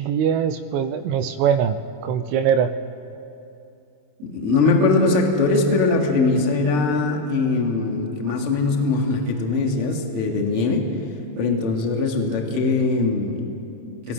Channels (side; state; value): left; late; 27 ms